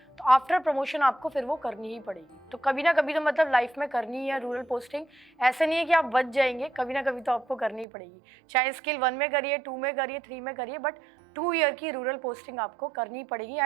तो आफ्टर प्रमोशन आपको फिर वो करनी ही पड़ेगी। तो कभी ना कभी तो मतलब लाइफ में करनी है रूरल पोस्टिंग, ऐसे नहीं है कि आप बच जाएंगे, कभी ना कभी तो आपको करनी ही पड़ेगी। चाहे स्केल 1 में करिए, 2 में करिए, 3 में करिए, बट 2 ईयर की रूरल पोस्टिंग आपको करनी पड़ेगी।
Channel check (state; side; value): drops out; left; at 7.9 s